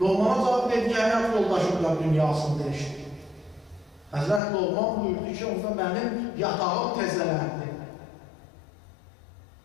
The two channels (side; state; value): right; drops out; at 4.4 s